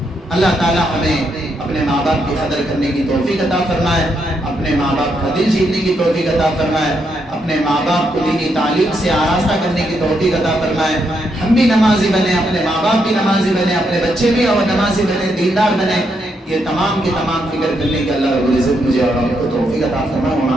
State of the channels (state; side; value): normal; both; correlation 0.79